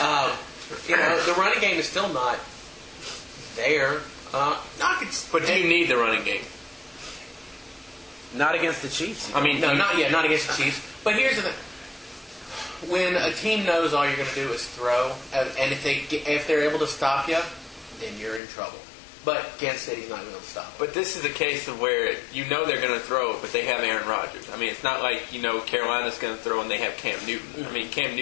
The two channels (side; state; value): right; drops out; at 18.4 s